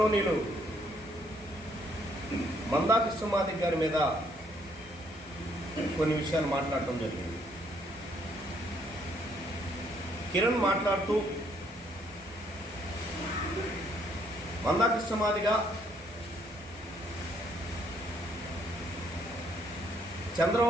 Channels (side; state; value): both; normal; correlation 0.68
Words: మందా కృష్ణమాదిగ గారి మీద కొన్ని విషయాలు మాట్లాడటం జరిగింది. కిరణ్ మాట్లాడుతూ మందా కృష్ణమాదిగ